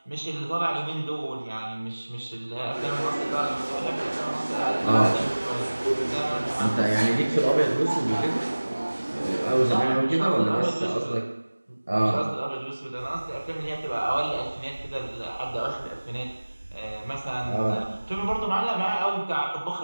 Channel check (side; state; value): both; inverted; correlation -1.00